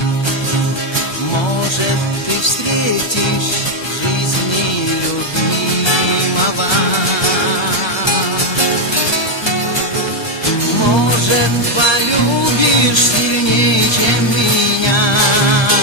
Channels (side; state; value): right; late; 1.3 ms